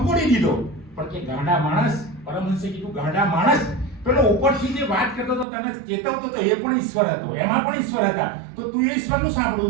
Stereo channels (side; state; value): left; drops out; at 5.5 s